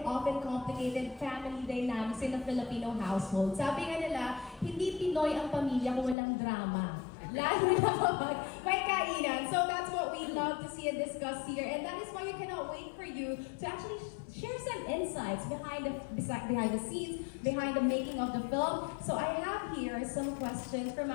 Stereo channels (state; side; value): drops out; right; at 6.2 s